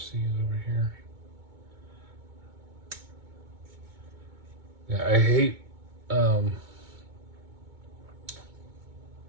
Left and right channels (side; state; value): left; late; 2.2 ms